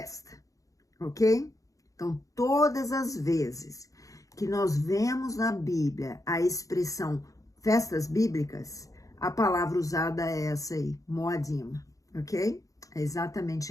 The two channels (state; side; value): late; right; 0.16 ms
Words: ok? Então, todas as vezes que nós vemos na Bíblia a expressão festas bíblicas, a palavra usada é essa aí, moadim, ok? É